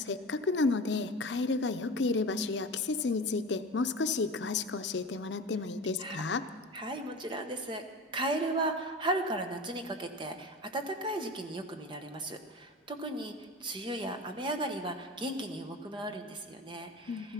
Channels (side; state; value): both; normal; correlation 0.32